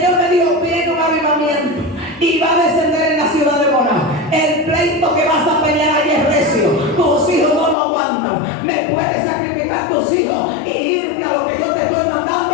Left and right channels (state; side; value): drops out; right; at 7.8 s